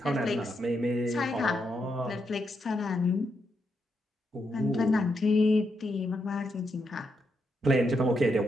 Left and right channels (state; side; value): normal; both; correlation 0.81